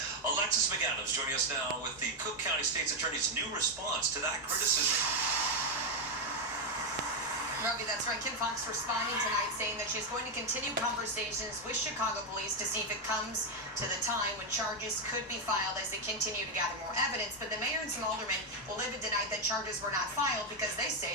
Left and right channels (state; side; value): normal; both; correlation 0.04